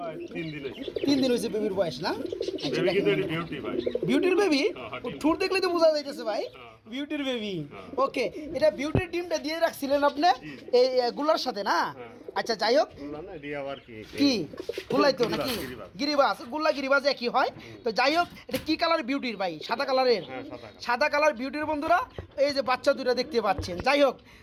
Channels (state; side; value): identical; both; correlation 1.00